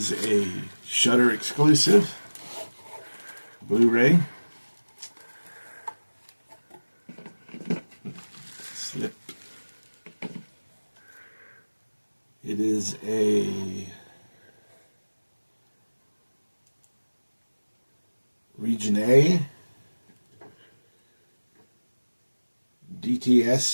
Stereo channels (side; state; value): both; inverted; correlation -1.00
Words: a Shudder exclusive Blu-ray. Slip. It is a Region A